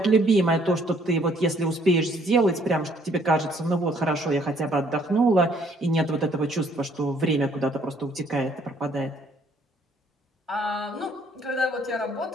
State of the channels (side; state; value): both; normal; correlation 0.64